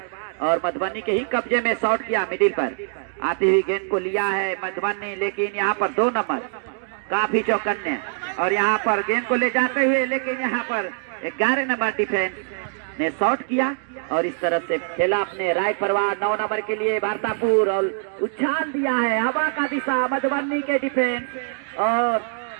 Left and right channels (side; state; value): left; silent; digital silence